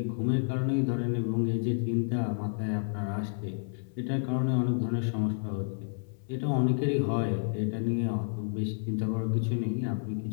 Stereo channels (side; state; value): right; silent; 58 dB below the other